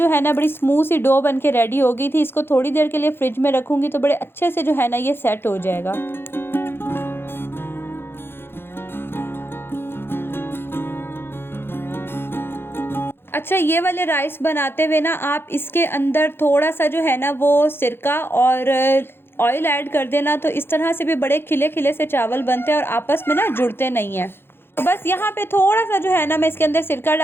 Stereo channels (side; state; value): right; late; 0.11 ms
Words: है ना बड़ी स्मूथ सी डो बन के रेडी हो गई थी। इसको थोड़ी देर के लिए फ्रिज में रखूँगी तो बड़े अच्छे से जो है ना ये सेट हो जाएगा। अच्छा, ये वाले राइस बनाते हुए ना आप इसके अंदर थोड़ा सा जो है ना वो सिरका और ऑयल ऐड कर देना, तो इस तरह से भी बड़े खिले खिले से चावल बनते हैं और आपस में ना जुड़ते नहीं हैं। तो बस यहाँ पे थोड़ा सा जो है ना मैं इसके अंदर सिरका